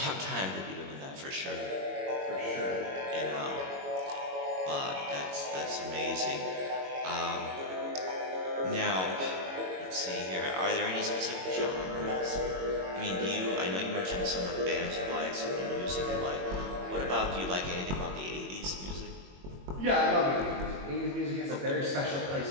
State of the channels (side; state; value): left; late; 21 ms